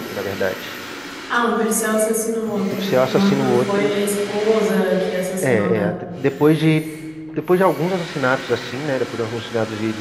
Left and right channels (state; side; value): noise; left; rumble, 30 dB below the sound